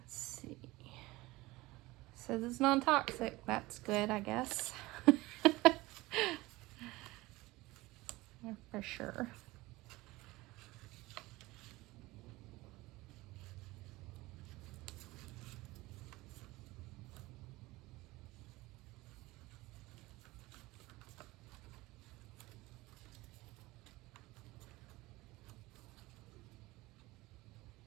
see. Says it's non-toxic. That's good, I guess. Yeah, for sure.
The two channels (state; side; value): quieter; left; 20.2 dB